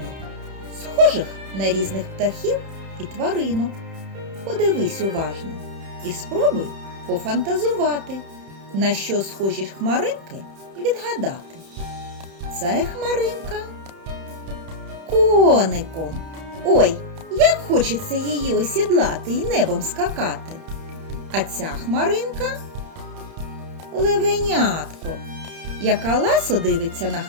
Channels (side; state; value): left; late; 31 ms